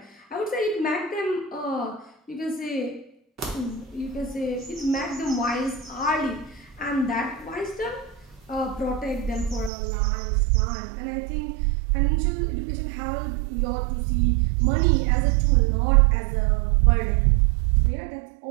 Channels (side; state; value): left; drops out; at 9.7 s